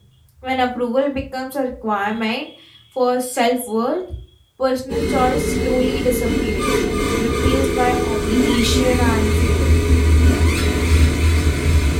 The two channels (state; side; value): identical; both; correlation 1.00